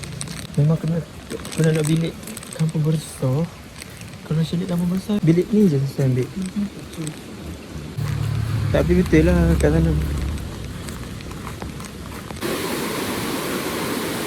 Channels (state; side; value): identical; both; correlation 1.00